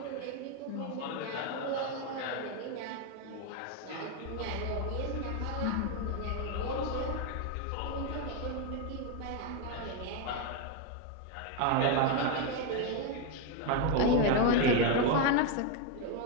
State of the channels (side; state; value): both; different; correlation 0.02